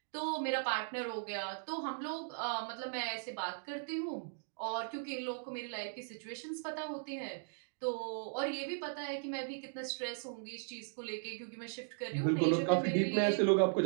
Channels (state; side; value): silent; left; digital silence